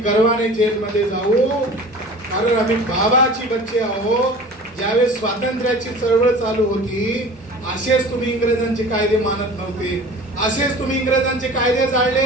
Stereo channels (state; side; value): normal; both; correlation 0.41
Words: गर्वाने जेलमध्ये जाऊ. कारण आम्ही बाबाची बच्चे आहोत. ज्यावेळेस स्वातंत्र्याची चळवळ चालू होती असेच तुम्ही इंग्रजांचे कायदे मानत नव्हते, असेच तुम्ही इंग्रजांचे कायदे